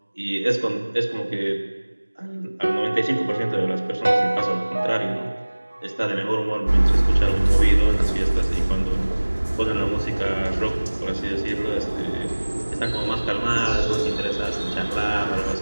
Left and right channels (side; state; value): both; inverted; correlation -1.00